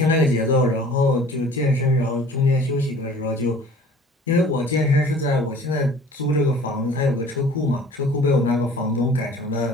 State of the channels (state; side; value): normal; both; correlation 0.49